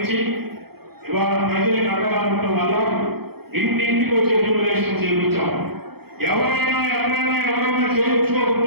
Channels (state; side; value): late; left; 0.96 ms